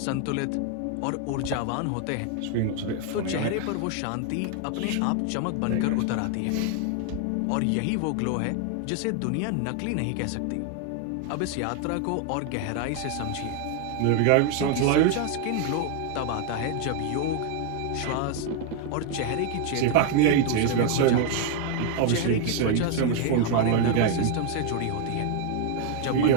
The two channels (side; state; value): both; different; correlation 0.00